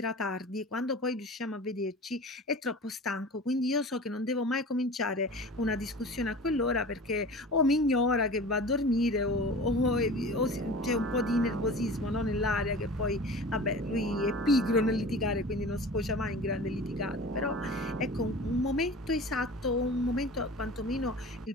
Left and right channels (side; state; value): both; normal; correlation 0.38